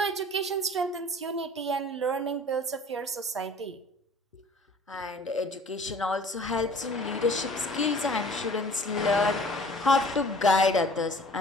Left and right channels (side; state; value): both; normal; correlation 0.49